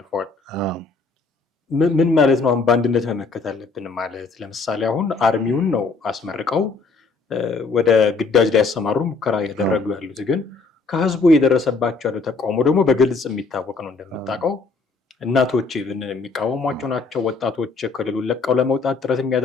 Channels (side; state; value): right; quieter; 4.2 dB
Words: ምን ማለት ነው? አሁን በአንድነት መመከት አለብን ማለት ለምሳሌ አሁን አርሚውን ነው አስመርቀው ወደ ግዳጅ ላይ ያሰማሩ ሙከራ ያደረጉ ያሉት፣ ግን ከህዝቡ የደረሰባቸው ያለው ተቃውሞ ደግሞ በግልጽ የሚታወቅ ነው። እንደምታውቀው እናቶች የሚቃወሟቸው ናቸው። ወጣቶች ክልሉን ለቀው ለመውጣት ጥረት